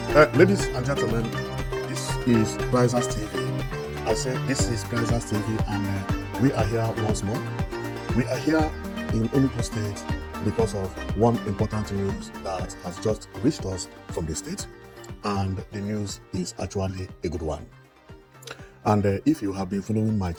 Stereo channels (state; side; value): identical; both; correlation 1.00